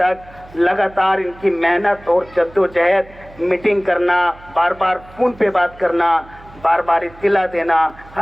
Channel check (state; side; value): noise; right; hum, 22 dB below the sound